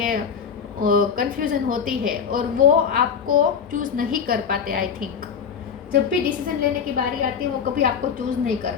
कंफ्यूजन होती है और वो आपको चूज नहीं कर पाते। आई थिंक जब भी डिसीजन लेने की बारी आती है वो कभी आपको चूज नहीं कर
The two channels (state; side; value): quieter; right; 7.0 dB